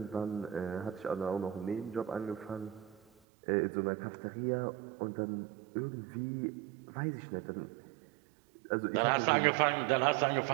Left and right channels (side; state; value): left; drops out; at 3.1 s